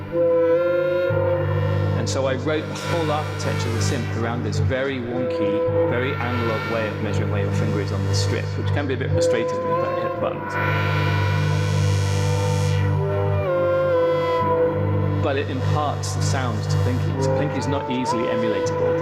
And so I wrote the whole architecture of the synth around this very wonky, very analog way of measuring where your finger is on the strip, which can be a bit frustrating when you don't hit the buttons. But it imparts the sounds to Plinky. So Plinky is not easily emulatable.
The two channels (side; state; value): both; identical; correlation 1.00